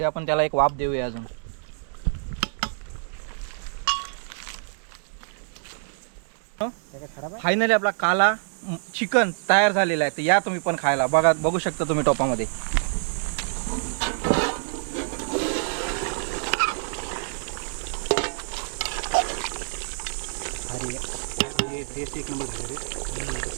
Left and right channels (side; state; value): left; silent; digital silence